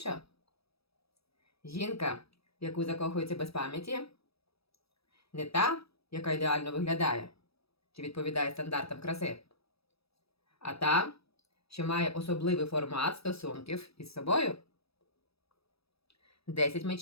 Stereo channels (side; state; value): right; late; 0.77 ms